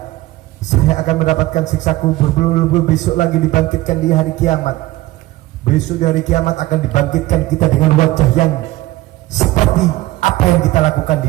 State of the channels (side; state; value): left; quieter; 17.9 dB